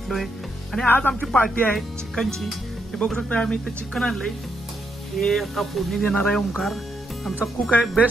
आणि आज आमची पार्टी आहे चिकनची. हे बघू शकता, आम्ही इथे चिकन आणलंय. हे आता फोडणी देणार आहे ओमकार, आमचा कुक आहे,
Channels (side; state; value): both; normal; correlation 0.79